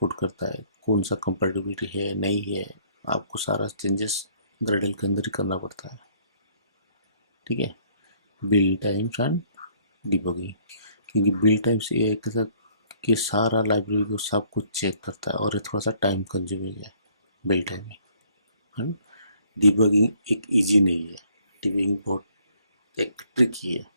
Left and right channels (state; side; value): inverted; both; correlation -0.61